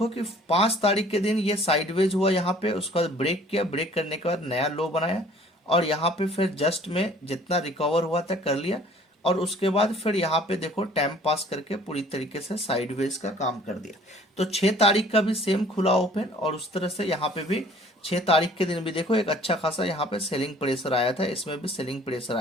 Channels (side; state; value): both; normal; correlation 0.54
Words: कि 5 तारीख के दिन ये साइडवेज हुआ, यहाँ पे उसका ब्रेक किया, ब्रेक करने के बाद नया लो बनाया और यहाँ पे फिर जस्ट में जितना रिकवर हुआ था कर लिया और उसके बाद फिर यहाँ पे देखो टाइम पास करके पूरी तरीके से साइडवेज का काम कर दिया। तो 6 तारीख का भी सेम खुला ओपन और उस तरह से यहाँ पे भी 6 तारीख के दिन भी देखो एक अच्छा खासा यहाँ पे सेलिंग प्रेशर आया था, इसमें भी सेलिंग प्रेशर